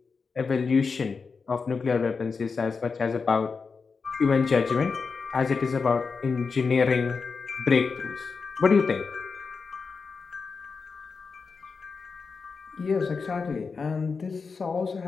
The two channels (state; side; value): quieter; right; 4.9 dB